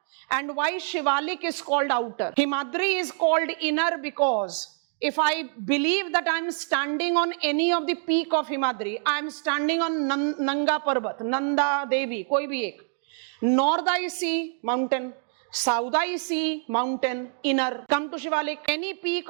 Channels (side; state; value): left; silent; 61 dB below the other